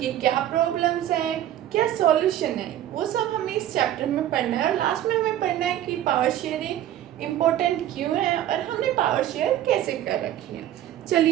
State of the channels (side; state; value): left; quieter; 12.2 dB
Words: क्या प्रॉब्लम्स हैं, क्या सॉल्यूशन है, वो सब हमें इस चैप्टर में पढ़ना है। और लास्ट में हमें पढ़ना है कि पावर शेयरिंग इम्पोर्टेंट क्यों है और हमने पावर शेयर कैसे कर रखी है।